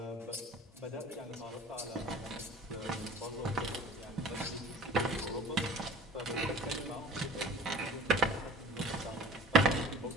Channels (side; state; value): both; normal; correlation 0.45